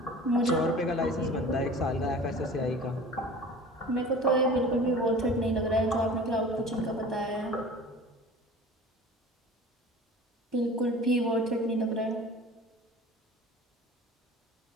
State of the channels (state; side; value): normal; both; correlation 0.41